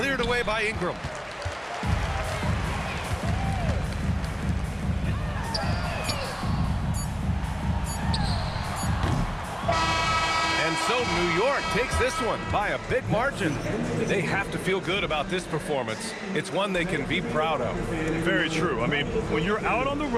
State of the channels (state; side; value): identical; both; correlation 1.00